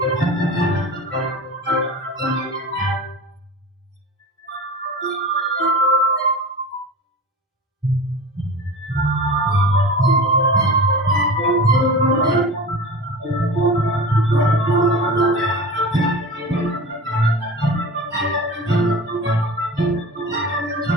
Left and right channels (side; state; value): both; normal; correlation 0.33